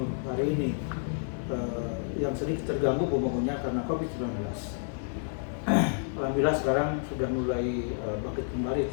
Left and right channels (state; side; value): silent; right; digital silence